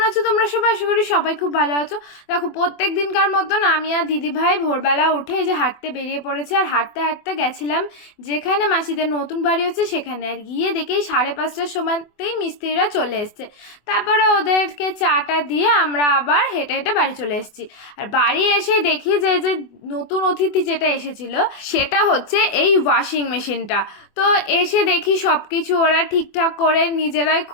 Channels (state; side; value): late; right; 24 ms